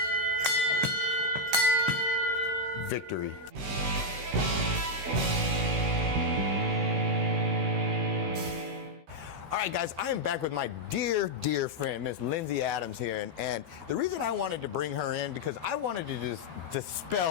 Victory. All right, guys, I am back with my dear, dear friend, Miss Lindsay Adams here. And the reason I wanted to bring her in, because I wanted to just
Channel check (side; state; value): left; late; 16 ms